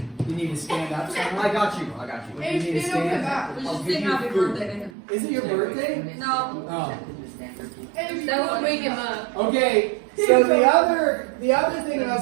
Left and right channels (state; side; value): drops out; left; at 4.9 s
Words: You need to stand up somewhere. I got you. You need to stand. We I'll should give sing you happy food. birthday to him. Is it your birthday? No. Oh. That will wake him up. Okay, so the other thing